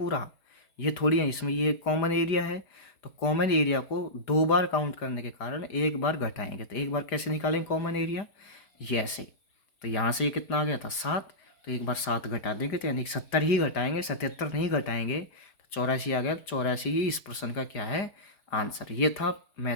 ये थोड़ी है, इसमें ये कॉमन एरिया है। तो कॉमन एरिया को 2 बार काउंट करने के कारण एक बार घटाएंगे। तो एक बार कैसे निकालेंगे कॉमन एरिया, ये ऐसे। तो यहाँ से ये कितना आ गया था 7, तो एक बार 7 घटा देंगे, तो यानी 70 ही घटाएंगे, 77 नहीं घटाएंगे। तो 84 आ गया, 84 ही इस प्रश्न का क्या है आंसर। ये था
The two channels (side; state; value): right; late; 5.0 ms